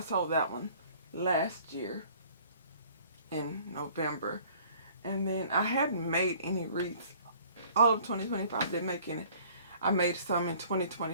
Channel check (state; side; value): inverted; both; correlation -0.53